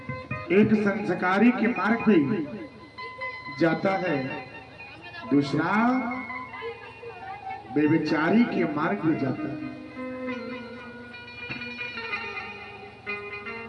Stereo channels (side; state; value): both; identical; correlation 1.00